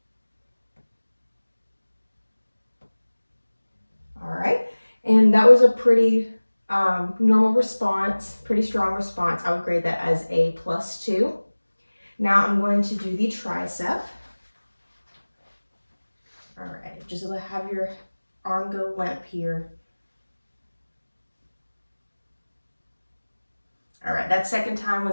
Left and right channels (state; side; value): inverted; both; correlation -1.00